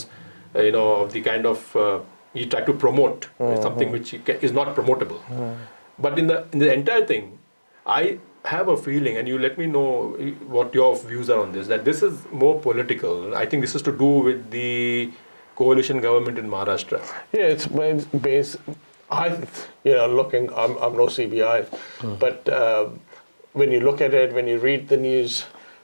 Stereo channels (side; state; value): both; inverted; correlation -1.00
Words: of the kind of he tried to promote something which is not promotable. But in the entire thing, I have a feeling, and you let me know what your views are on this, that this is more political. I think this is to do with the coalition government in Maharashtra. Yeah, it's based. I'm no CBI, but when you look at it, when you read the news,